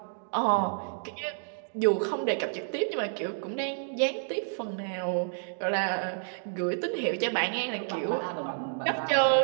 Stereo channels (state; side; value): silent; left; digital silence